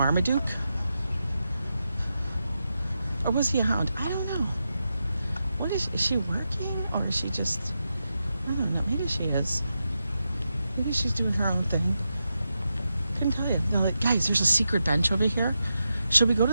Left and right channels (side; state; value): both; inverted; correlation -0.88